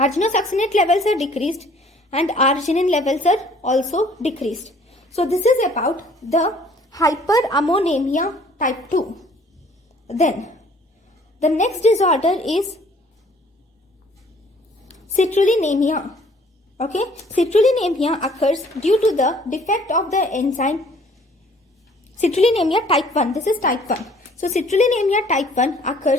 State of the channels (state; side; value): normal; both; correlation 0.57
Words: levels are decreased, and arginine levels are also decreased. So this is about the hyperammonemia type 2. Then the next disorder is citrullinemia. Okay, citrullinemia occurs due to the defect of the enzyme Citrullinemia type 1. This is type 1. So citrullinemia type 1